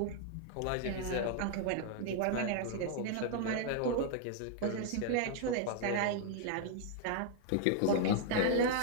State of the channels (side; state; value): both; different; correlation 0.00